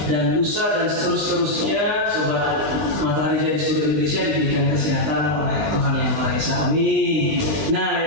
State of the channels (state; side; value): late; left; 20 ms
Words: dan lusa dan seterusnya Sobat Matahari Jaya di seluruh Indonesia diberikan kesehatan oleh Tuhan Yang Maha Esa. Amin. Nah,